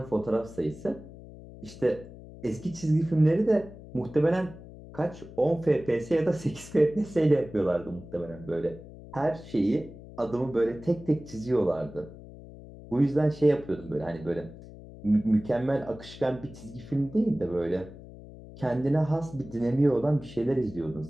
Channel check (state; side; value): noise; left; hum, 16 dB below the sound